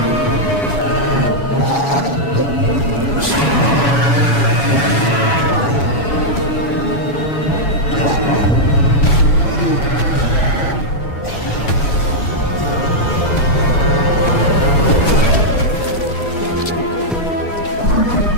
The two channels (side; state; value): right; late; 7.1 ms